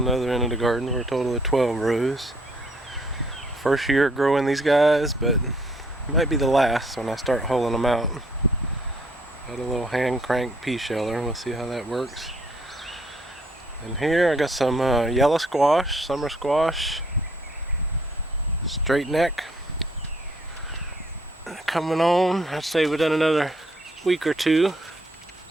the other end of the garden for a total of 12 rows. First year growing these guys, but it might be the last when I start hulling them out. Got a little hand crank pea sheller, we'll see how that works. And here I got some yellow squash, summer squash, straight neck. Coming on, I'd say within another week or 2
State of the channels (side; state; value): both; normal; correlation 0.66